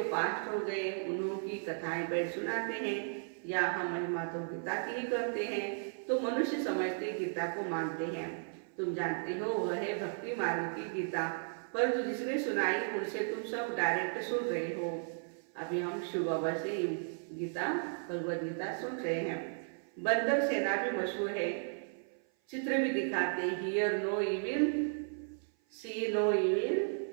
पास्ट हो गए, उन्होंने कथाएं बैठ सुनाते हैं, या हम महिमा तो गीता की ही करते हैं। तो मनुष्य समझते गीता को मानते हैं। तुम जानते हो वह है भक्ति मार्ग की गीता, परंतु जिसने सुनाई उनसे तुम सब डायरेक्ट सुन रहे हो। अभी हम शिव बाबा से गीता भगवद गीता सुन रहे हैं। बंदर सेना भी मशहूर है, चित्र भी दिखाते हैं। Hear no evil, see no evil,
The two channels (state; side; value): silent; left; 54 dB below the other